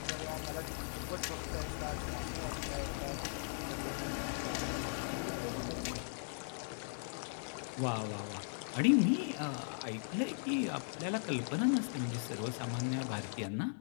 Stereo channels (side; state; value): right; silent; digital silence